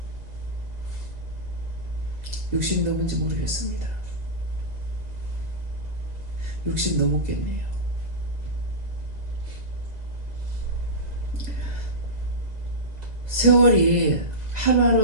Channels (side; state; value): left; late; 2.0 ms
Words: 60 넘은지 모르겠습니다. 60 넘었겠네요. 세월이